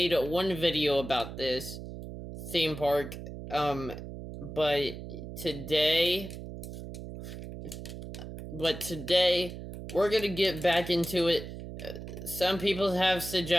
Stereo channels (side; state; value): right; noise; hum, 10 dB below the sound